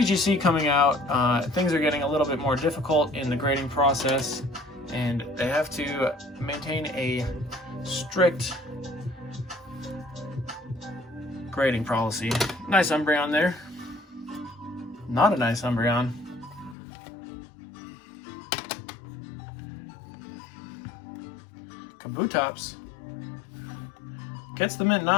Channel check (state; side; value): drops out; right; at 16.8 s